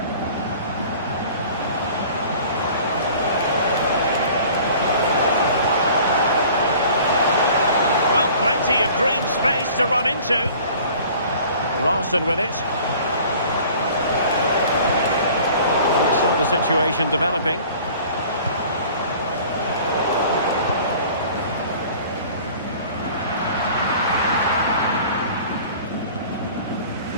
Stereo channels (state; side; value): inverted; both; correlation -0.47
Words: Well, plenty of green space to run into. Larson with it. Saw the situation developing.